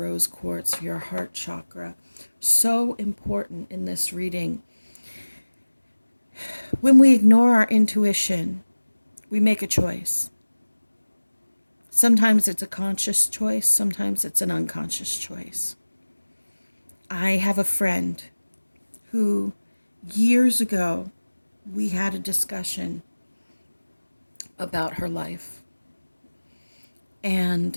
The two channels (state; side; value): inverted; both; correlation -1.00